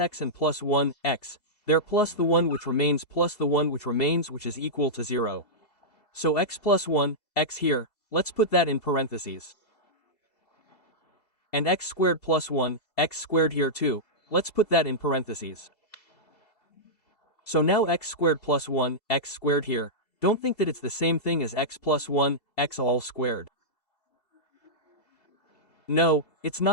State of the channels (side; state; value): right; late; 2.7 ms